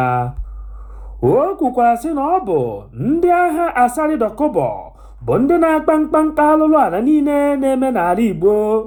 O kwukwara sị na ọ bụ ndị agha Asari Dokubo bụ ndị na-akpa mkpamkpa alụlụ ala niile na-eme n'ala Igbo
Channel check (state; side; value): identical; both; correlation 1.00